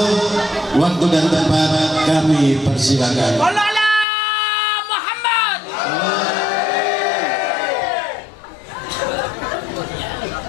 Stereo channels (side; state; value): right; drops out; at 4.0 s